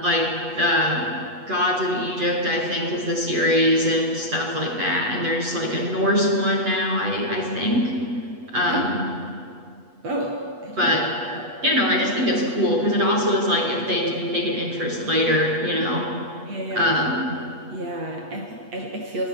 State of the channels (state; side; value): late; left; 8.2 ms